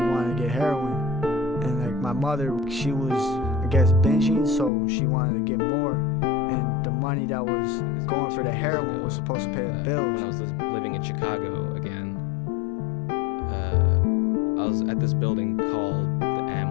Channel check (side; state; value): right; drops out; at 4.7 s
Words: wanted to get heroin. And like my mother, she was, I guess, binging, so she wanted to get more. And the money that was going for the heroin was supposed to pay the bills. When I was living in Chicago again, I was at this building called the